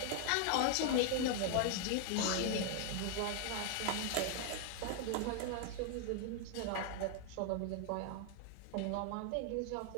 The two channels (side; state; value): both; different; correlation 0.00